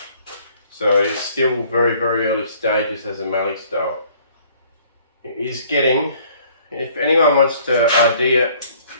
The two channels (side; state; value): both; inverted; correlation -0.58